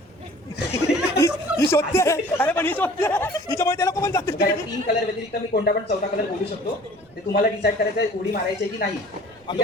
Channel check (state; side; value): noise; right; rumble, 30 dB below the sound